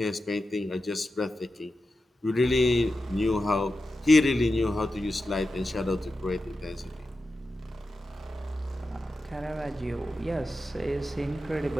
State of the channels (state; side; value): normal; both; correlation 0.90